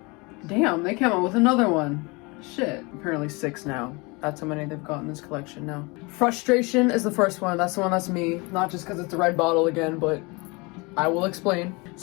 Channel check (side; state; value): right; quieter; 27.0 dB